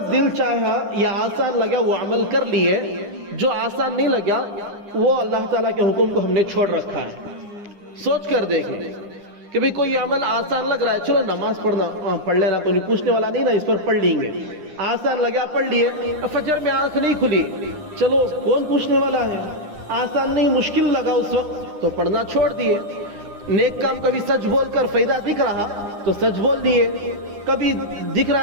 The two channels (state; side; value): late; left; 9.9 ms